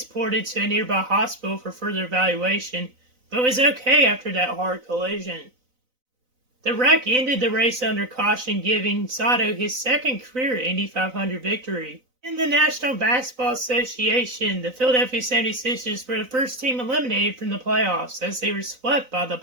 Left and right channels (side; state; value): left; late; 4.0 ms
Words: to a nearby hospital for further evaluation, but was okay after that hard collision. The wreck ended the race under caution, giving Sato his 2nd career Indy 500 victory. In the National Basketball Association, the Philadelphia 76ers were the first team eliminated from the playoffs as they were swept by the